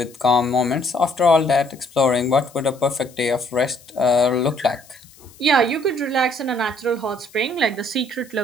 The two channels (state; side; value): noise; left; hiss, 25 dB below the sound